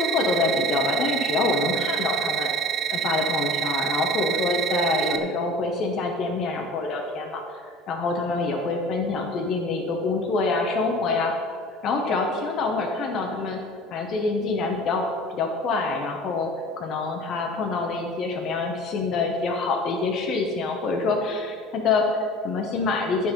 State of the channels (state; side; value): normal; both; correlation 0.42